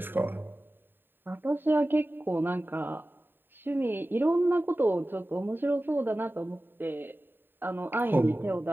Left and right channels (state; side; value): late; left; 0.096 ms